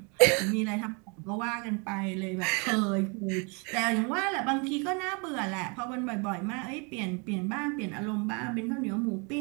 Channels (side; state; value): left; quieter; 33.0 dB